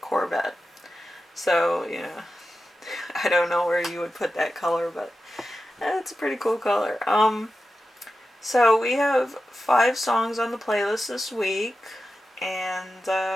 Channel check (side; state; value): both; normal; correlation 0.92